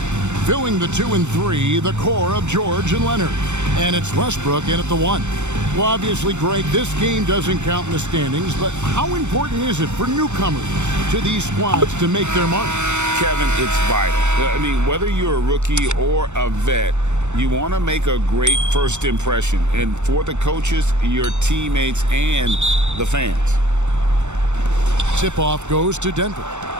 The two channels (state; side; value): late; left; 0.84 ms